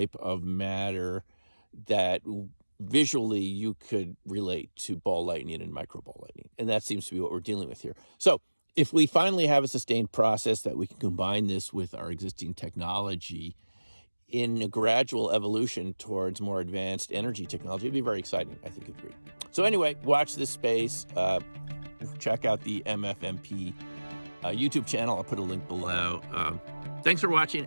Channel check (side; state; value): both; inverted; correlation -1.00